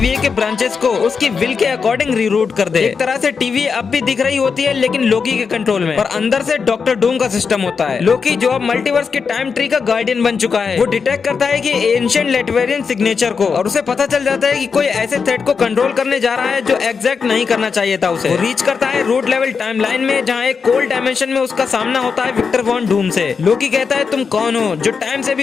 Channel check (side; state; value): right; quieter; 5.6 dB